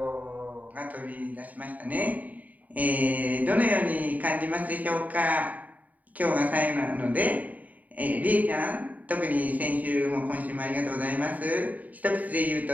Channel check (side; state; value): left; late; 0.074 ms